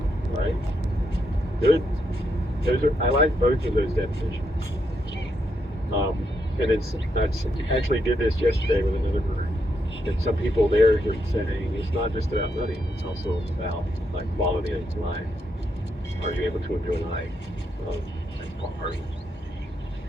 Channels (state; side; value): normal; both; correlation 0.80